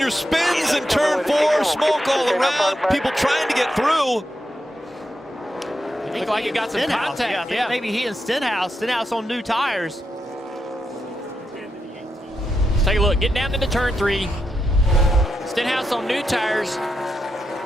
spins in turn 4, smoke all around, people trying to get through. Looked like it got some contact. Yeah, maybe he and Stenhouse on new tires. Let's take a look. Get down into turn 3. Stenhouse on new tires.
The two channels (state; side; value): normal; both; correlation 0.85